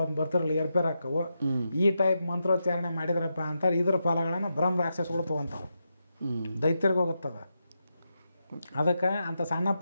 ಬರ್ತಿರಲ್ಲ, ಏರ್ಪೇರ್ ಹಾಕವು. ಈ ಟೈಪ್ ಮಂತ್ರೋಚ್ಚಾರಣೆ ಮಾಡಿದ್ರಪ್ಪ ಅಂತಾರೆ. ಇದ್ರ ಫಲಗಳನ್ನು ಬ್ರಹ್ಮ ರಾಕ್ಷಸಗಳು ತೊಗೊಂತಾವು, ದೈತ್ಯರಿಗೆ ಹೋಗುತ್ತದ. ಅದಕ್ಕೆ ಅಂತ ಸಣ್ಣ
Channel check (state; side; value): inverted; both; correlation -0.86